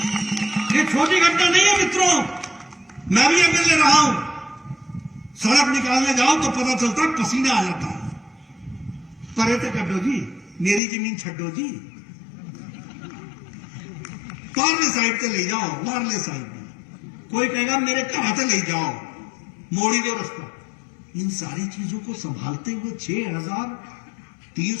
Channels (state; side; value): drops out; right; at 10.8 s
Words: ये छोटी घटना नहीं है मित्रों, मैं भी एमएलए रहा हूं। सड़क निकालने जाओ तो पता चलता है पसीना आ जाता है। परे तो कड्डो जी, मेरी जमीन छड्डो जी, पारले साइड से ले जाओ, वारले साइड में कोई कहेगा मेरे घर से ले जाओ, मोड़ी दो रास्ता। इन सारी चीजों को संभालते हुए